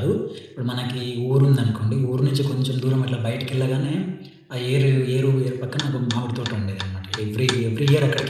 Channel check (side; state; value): both; identical; correlation 1.00